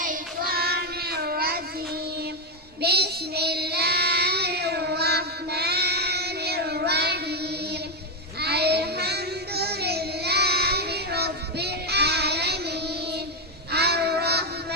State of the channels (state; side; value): normal; both; correlation 0.05